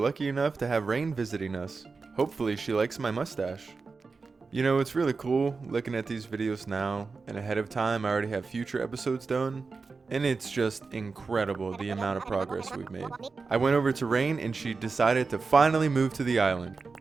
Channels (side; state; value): left; quieter; 4.4 dB